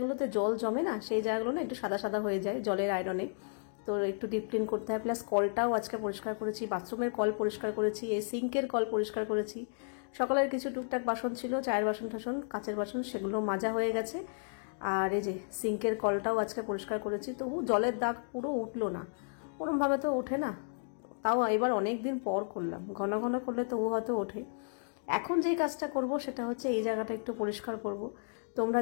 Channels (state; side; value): silent; right; digital silence